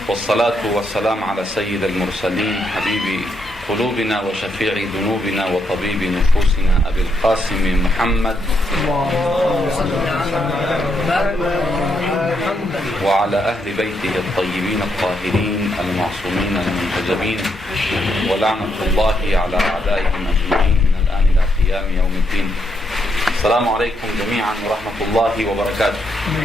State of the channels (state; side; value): normal; both; correlation 0.78